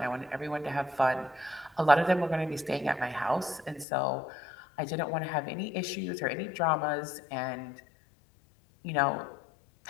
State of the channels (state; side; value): drops out; right; at 3.9 s